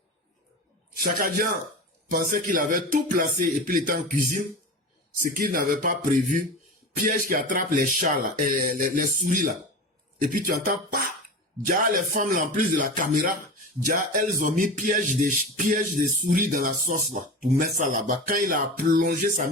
Chaka Dian pensait qu'il avait tout placé et puis il était en cuisine, ce qu'il n'avait pas prévu, piège qui attrape les chats là, et les souris là. Et puis tu entends pas, déjà les femmes là, en plus de la caméra, déjà elles ont mis piège des souris dans la sauce là, pour mettre ça là-bas. Quand il a plongé sa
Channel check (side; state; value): both; normal; correlation 0.29